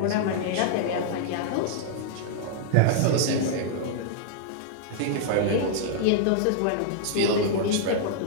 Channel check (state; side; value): different; both; correlation -0.01